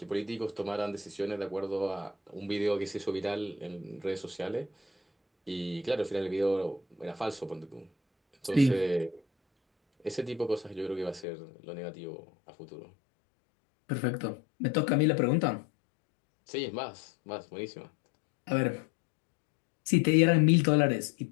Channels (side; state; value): right; drops out; at 11.2 s